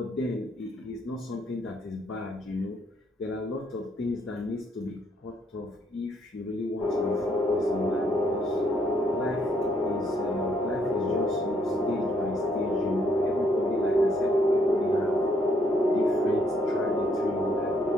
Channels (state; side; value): normal; both; correlation 0.70